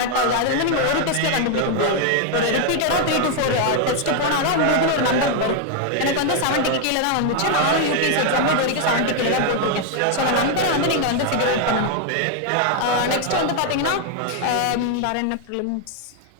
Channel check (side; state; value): both; different; correlation 0.00